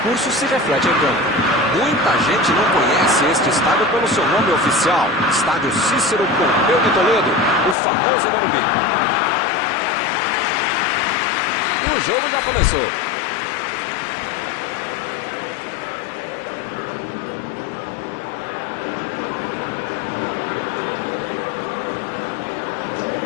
se reflete em campo. Muita gente não conhece este estádio pelo seu nome oficial, Estádio Cícero Pompeu de Toledo, o famoso Morumbi. E o jogo já começou.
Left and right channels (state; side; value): drops out; right; at 7.8 s